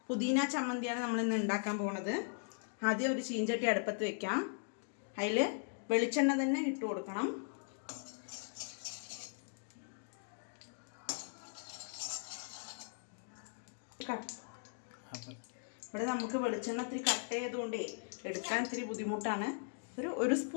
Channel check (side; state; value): right; silent; digital silence